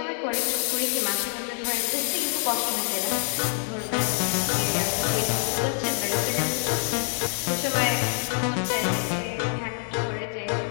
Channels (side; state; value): right; silent; 61 dB below the other